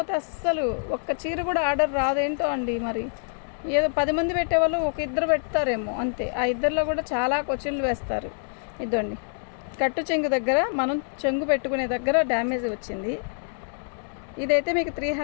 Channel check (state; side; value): silent; right; digital silence